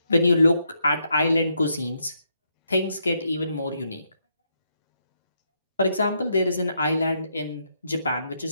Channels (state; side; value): inverted; both; correlation -0.78